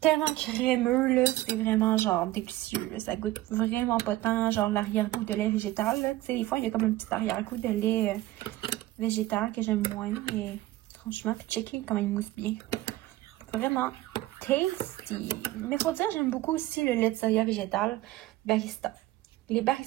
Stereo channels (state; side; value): quieter; left; 16.6 dB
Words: tellement crémeux, là. C'est vraiment genre délicieux, là. Ça goûte vraiment pas tant genre l'arrière-goût de lait végétal, là. Tu sais, des fois, il y a comme un petit arrière-goût de lait végétal que j'aime moins. Mais franchement, puis checker comment il mousse bien. Vraiment tasty. Mais faut dire, j'aime beaucoup aussi le lait de soya végétal barista. Les